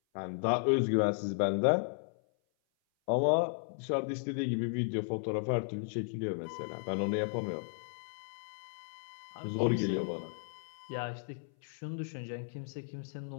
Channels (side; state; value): right; silent; 55 dB below the other